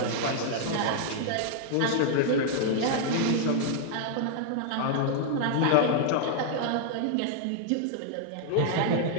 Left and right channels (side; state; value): both; different; correlation -0.01